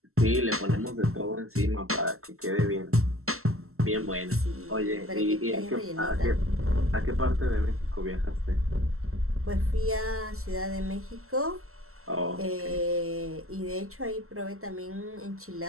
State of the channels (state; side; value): late; left; 0.63 ms